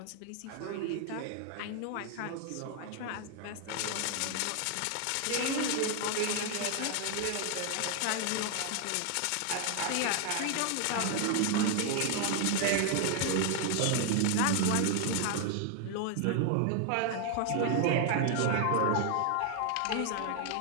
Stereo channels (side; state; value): both; different; correlation 0.00